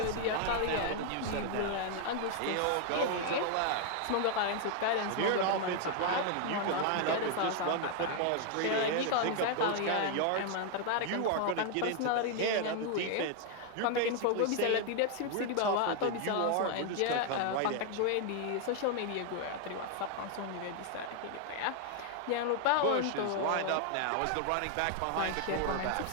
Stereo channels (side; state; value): both; different; correlation 0.00